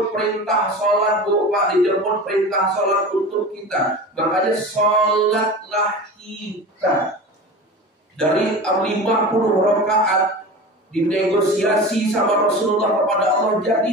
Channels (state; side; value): normal; both; correlation 0.32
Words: perintah sholat, Pak, dijemput perintah sholat untuk kita. Makanya sholatlah kita. Dari 50 rakaat dinegosiasi sama Rasulullah kepada Allah